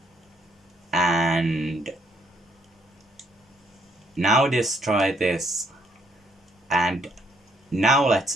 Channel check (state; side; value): normal; both; correlation 0.68